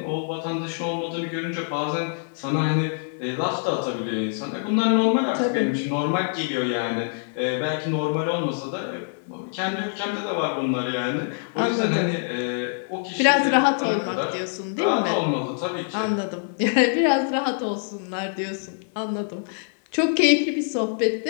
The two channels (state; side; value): silent; right; digital silence